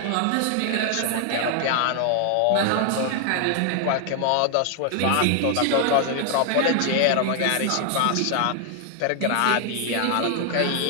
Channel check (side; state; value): both; different; correlation 0.00